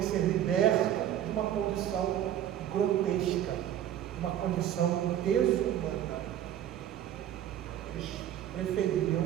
ser liberto de uma condição grotesca, de uma condição desumana, eles preferiam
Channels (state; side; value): quieter; left; 11.0 dB